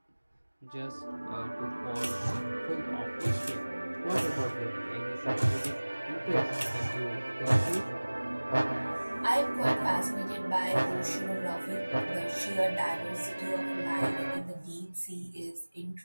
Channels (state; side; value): inverted; both; correlation -1.00